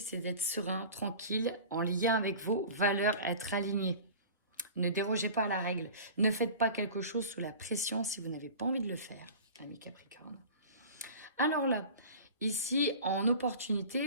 c'est d'être serein, tranquille, en lien avec vos valeurs, être aligné. Ne dérogez pas à la règle. Ne faites pas quelque chose sous la pression si vous n'avez pas envie de le faire, ami Capricorne. Alors là, ici, en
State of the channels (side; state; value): both; inverted; correlation -0.38